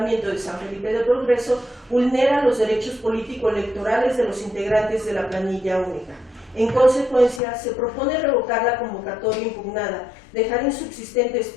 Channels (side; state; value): right; drops out; at 7.4 s